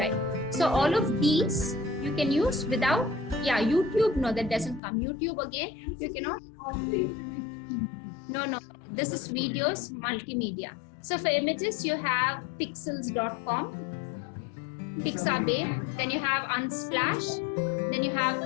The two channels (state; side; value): drops out; right; at 4.8 s